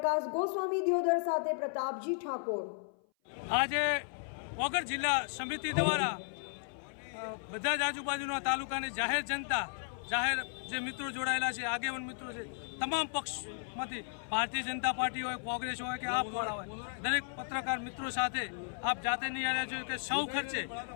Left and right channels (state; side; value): silent; right; 55 dB below the other